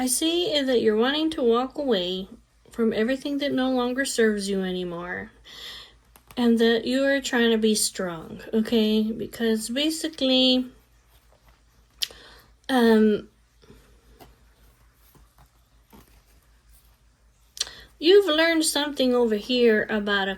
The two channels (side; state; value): both; identical; correlation 1.00